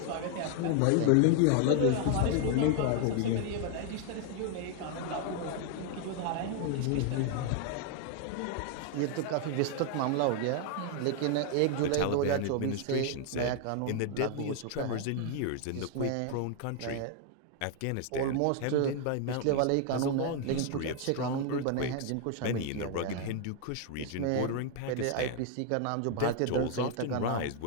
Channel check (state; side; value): different; both; correlation 0.00